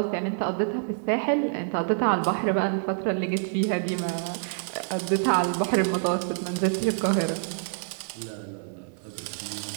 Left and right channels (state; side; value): silent; left; 60 dB below the other